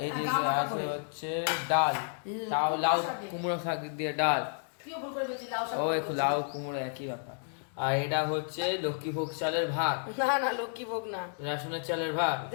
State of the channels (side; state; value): right; silent; digital silence